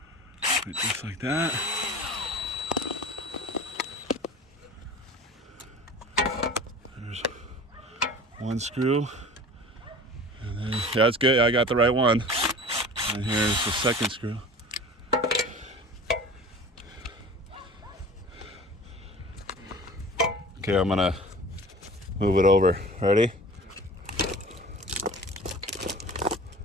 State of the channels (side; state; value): both; normal; correlation 0.39